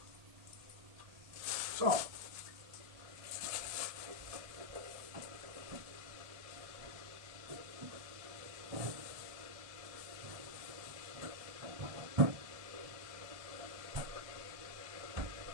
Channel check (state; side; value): late; left; 1.7 ms